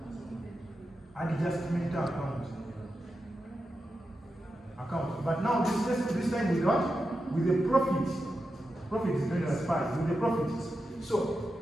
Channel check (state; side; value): normal; both; correlation 0.89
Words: adjustment account. But now this time with what? With the profit. Profit is going as 5 with the profit. So